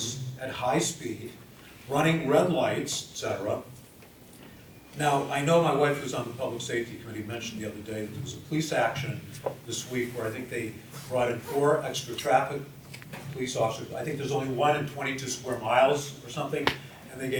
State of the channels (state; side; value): identical; both; correlation 1.00